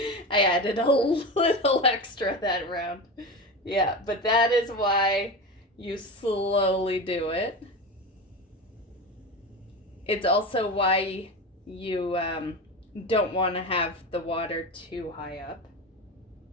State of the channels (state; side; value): normal; both; correlation 0.24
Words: added a little extra that round. Yeah, but that is why you slowly do it. It's also why you don't want to have the water too high up.